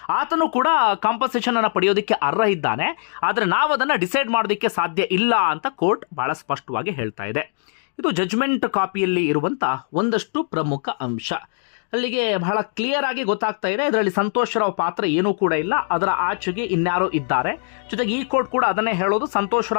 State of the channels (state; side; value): silent; right; digital silence